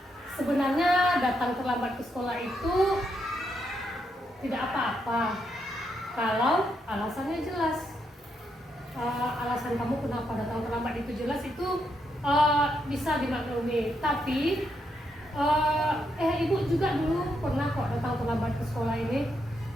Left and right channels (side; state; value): both; normal; correlation 0.80